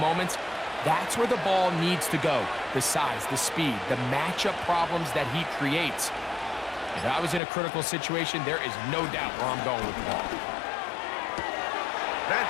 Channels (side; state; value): right; drops out; at 7.4 s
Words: that's where the ball needs to go. The size, the speed, the matchup problems that he creates. If I was in a critical situation, there is no doubt where I'm going with the ball.